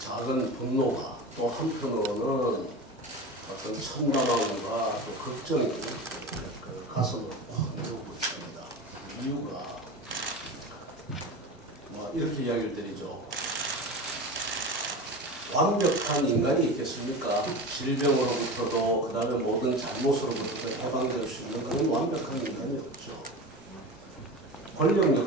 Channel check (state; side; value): normal; both; correlation 0.29